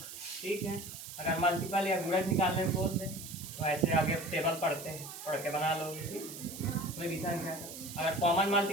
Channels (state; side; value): noise; right; hiss, 11 dB below the sound